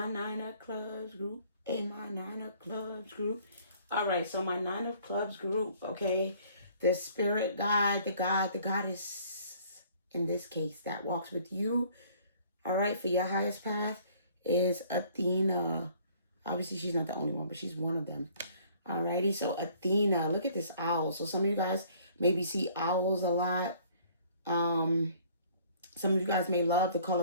9 of Clubs group, and my 9 of Clubs group. All right, so my 9 of Clubs group, okay, the spirit guide, the goddess, in this case, that walks with you, all right, for your highest path is Athena. Obviously, she's not the only one, but she's one of them. Alrighty, so Athena, look at this owl. So some of you guys maybe see owls a lot. Some of you guys may love the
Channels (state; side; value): inverted; both; correlation -0.57